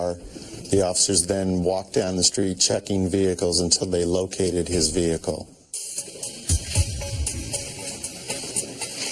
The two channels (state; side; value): identical; both; correlation 1.00